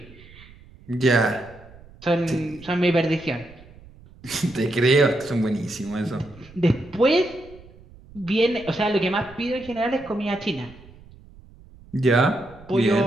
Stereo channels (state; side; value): noise; right; rumble, 22 dB below the sound